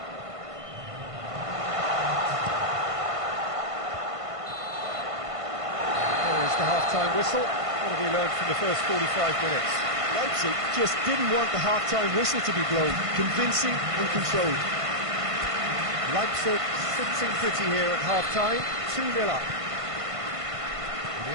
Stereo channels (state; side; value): late; left; 1.5 ms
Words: There's the half-time whistle. What have you learned from the first 45 minutes? Leipzig just didn't want the half-time whistle to be blown. Convincing and controlled. Leipzig sitting pretty here at half-time, 2-0 up. The